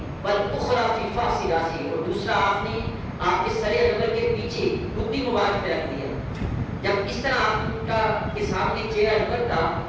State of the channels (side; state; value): both; identical; correlation 1.00